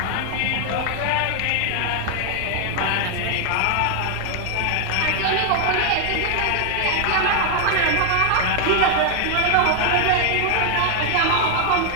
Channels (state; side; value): different; both; correlation 0.00